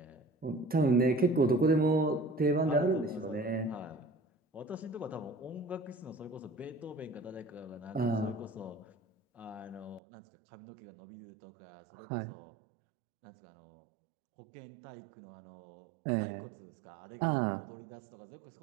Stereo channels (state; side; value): drops out; left; at 10.0 s